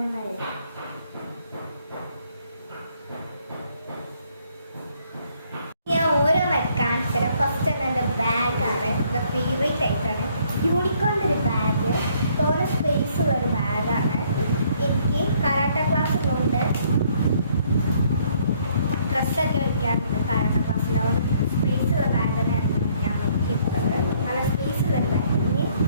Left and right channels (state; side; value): inverted; both; correlation -0.65